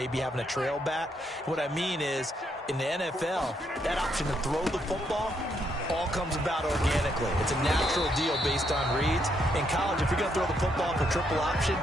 having a trail back. What I mean is, in the NFL, that option to throw the football all comes about organically. It's a natural deal based on reads. In college, if you're going to throw the football for triple option,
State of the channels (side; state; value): both; normal; correlation 0.75